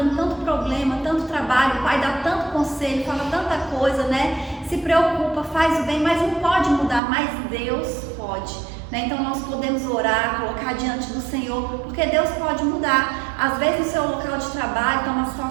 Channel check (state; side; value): drops out; left; at 7.0 s